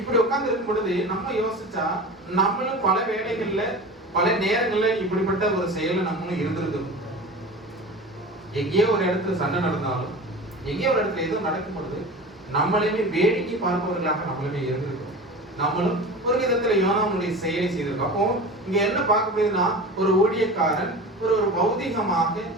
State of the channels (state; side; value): normal; both; correlation 0.34